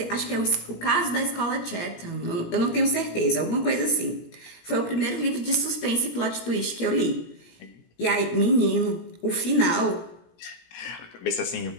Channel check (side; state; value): right; late; 17 ms